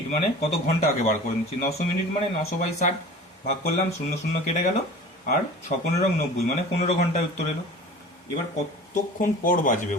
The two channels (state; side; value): normal; both; correlation 0.39